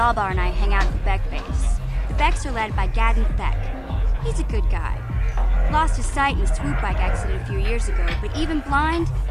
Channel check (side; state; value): both; identical; correlation 1.00